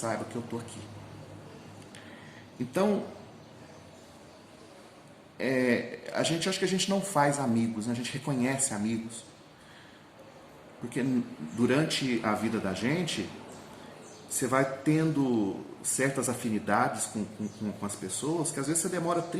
que eu estou aqui. Então, acho que a gente não faz amigos, né? A gente reconhece amigos. Porque durante a vida da gente, você vai tendo certas afinidades com as pessoas, que às vezes você demora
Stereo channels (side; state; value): both; identical; correlation 1.00